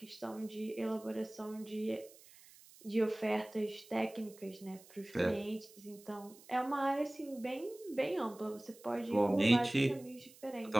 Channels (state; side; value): noise; right; hiss, 22 dB below the sound